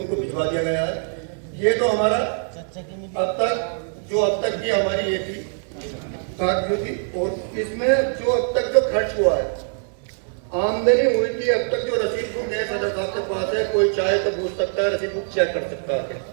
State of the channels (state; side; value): silent; left; 63 dB below the other